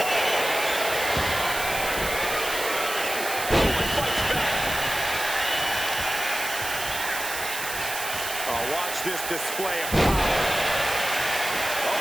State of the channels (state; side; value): noise; right; hiss, 6 dB below the sound